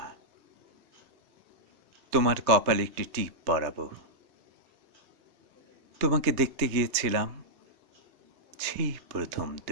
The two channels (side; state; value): left; late; 3.2 ms